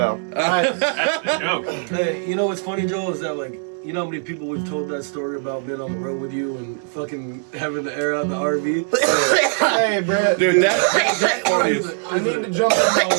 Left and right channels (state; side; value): silent; left; digital silence